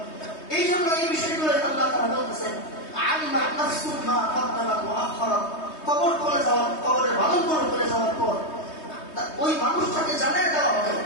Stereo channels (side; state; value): right; late; 3.2 ms